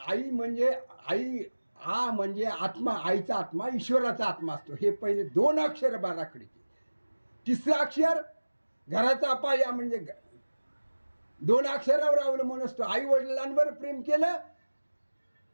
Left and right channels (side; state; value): both; inverted; correlation -1.00